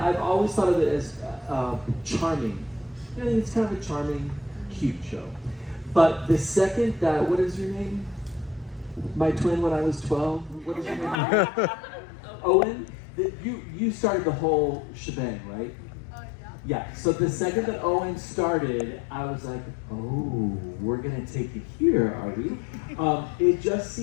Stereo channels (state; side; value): drops out; right; at 11.2 s